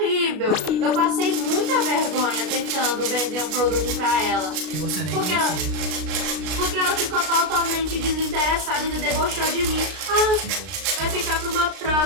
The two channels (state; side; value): late; left; 33 ms